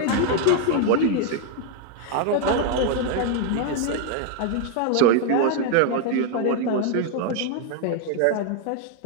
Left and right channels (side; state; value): both; different; correlation 0.00